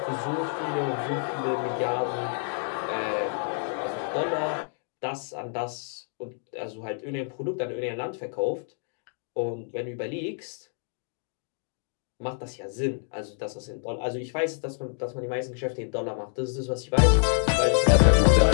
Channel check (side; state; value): right; silent; 56 dB below the other